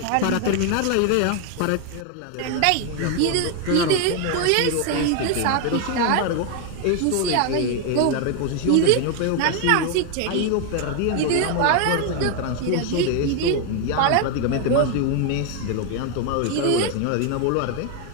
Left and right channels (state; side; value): different; both; correlation 0.01